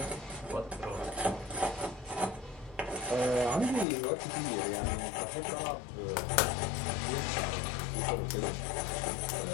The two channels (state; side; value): drops out; right; at 3.9 s